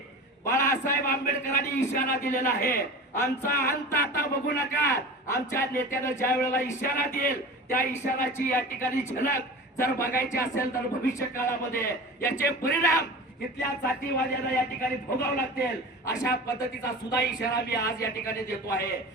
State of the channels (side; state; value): both; normal; correlation 0.34